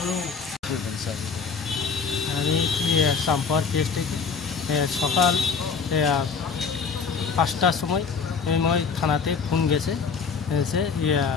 আমি সাম্পার পেজ থেকে সকাল 5টার সময় থানাতে ফোন গেছে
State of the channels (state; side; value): quieter; right; 5.6 dB